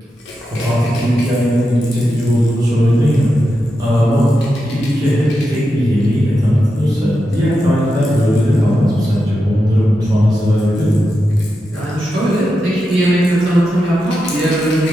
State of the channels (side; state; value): both; normal; correlation 0.88